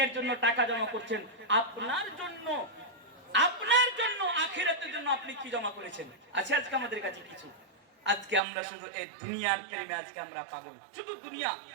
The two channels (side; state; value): left; drops out; at 8.4 s